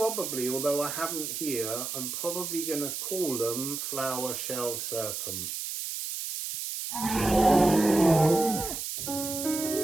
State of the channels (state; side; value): noise; right; hiss, 5 dB below the sound